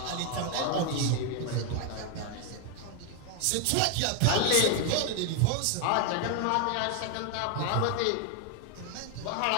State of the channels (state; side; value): different; both; correlation 0.01